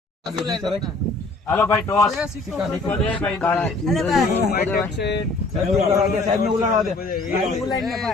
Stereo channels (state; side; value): quieter; right; 3.1 dB